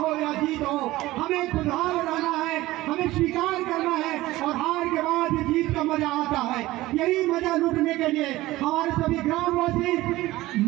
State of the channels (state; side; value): quieter; left; 17.6 dB